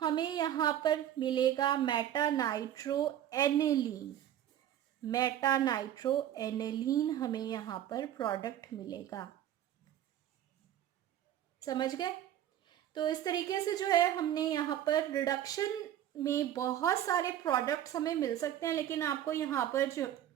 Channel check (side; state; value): left; quieter; 11.4 dB